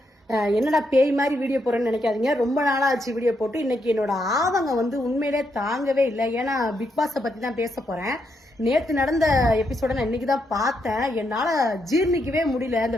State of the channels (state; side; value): normal; both; correlation 0.79